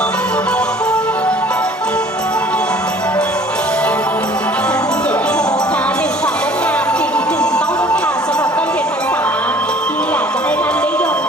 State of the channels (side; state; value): both; normal; correlation 0.52